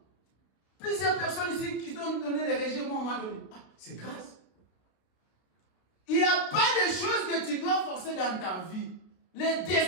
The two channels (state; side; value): late; right; 32 ms